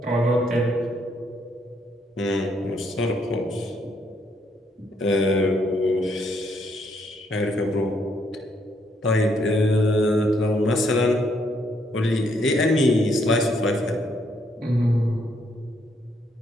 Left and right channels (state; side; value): normal; both; correlation 0.72